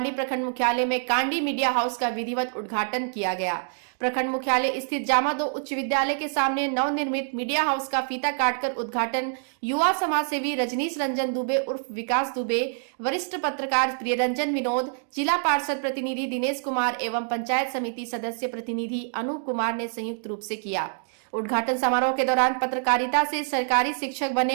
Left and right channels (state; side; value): silent; left; 61 dB below the other